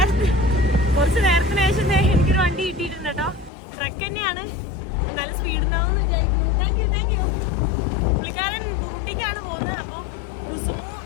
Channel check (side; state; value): right; drops out; at 3.5 s